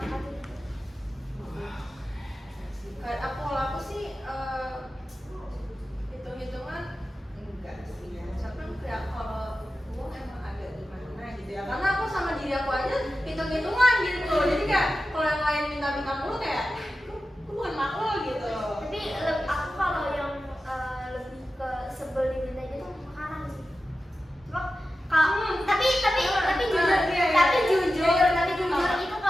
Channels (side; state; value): both; normal; correlation 0.93